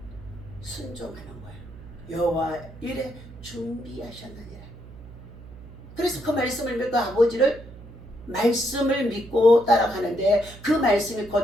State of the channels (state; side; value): noise; right; hum, 17 dB below the sound